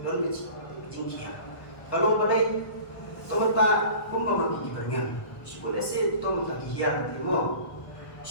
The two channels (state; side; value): late; right; 1.1 ms